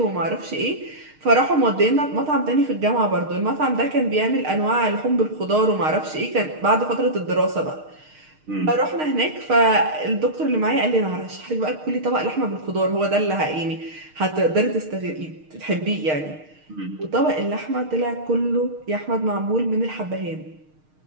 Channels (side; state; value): left; late; 6.5 ms